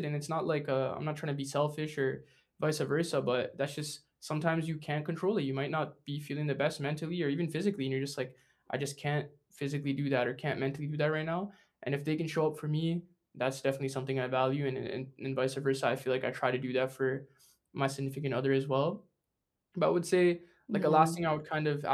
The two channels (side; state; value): both; identical; correlation 1.00